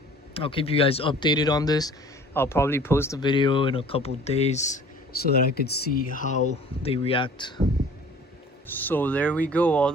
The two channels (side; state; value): both; normal; correlation 0.48